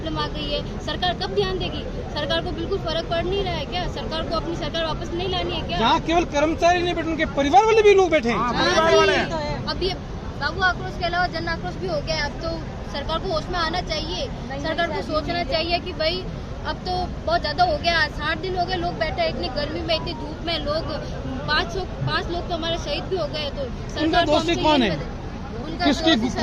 आ गई है। सरकार कब ध्यान देगी? सरकार को बिल्कुल फर्क पड़ नहीं रहा है क्या? सरकार को अपनी सरकार वापस नहीं लानी है क्या? यहाँ केवल कर्मचारी नहीं बैठे, उनके परिवार वाले भी लोग बैठे हैं। अब ये बाबू आक्रोश के अलावा जन आक्रोश भी हो गया। अब तो सरकार को होश में आना चाहिए। सरकार को सोचना चाहिए कि भाई अब तो बहुत ज्यादा हो गया। 60 दिन हो गए लोग बैठे, इतनी गर्मी में, इतनी धूप में। लोग 5 लोग तो हमारे शहीद भी हो गए। तो सरकार को दोषी कौन है? किसकी दोषी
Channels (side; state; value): both; identical; correlation 1.00